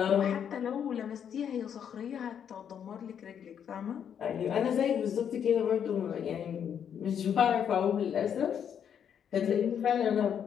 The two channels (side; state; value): right; quieter; 8.4 dB